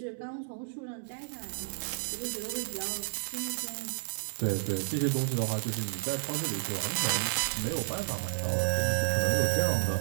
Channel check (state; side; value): silent; left; digital silence